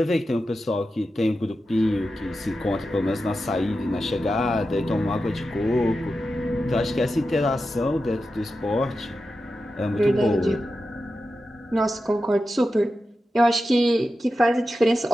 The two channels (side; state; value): both; normal; correlation 0.91